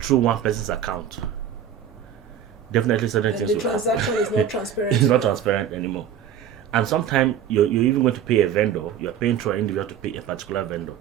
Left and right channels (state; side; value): quieter; left; 9.0 dB